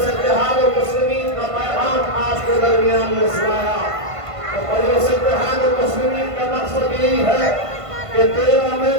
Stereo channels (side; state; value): left; late; 1.5 ms